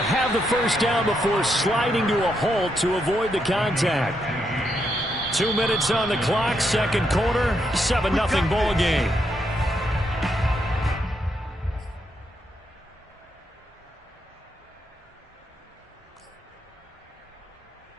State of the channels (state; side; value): normal; both; correlation 0.79